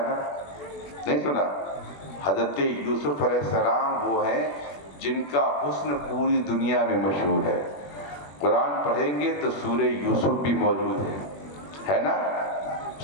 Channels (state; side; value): late; right; 21 ms